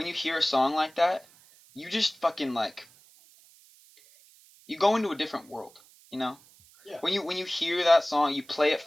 you hear a song like that, you just fucking like you go into a different world, you know? Yeah. When you hear that song, you play it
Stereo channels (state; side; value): noise; right; hiss, 27 dB below the sound